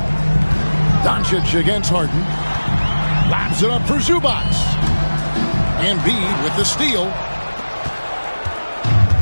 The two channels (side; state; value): both; inverted; correlation -1.00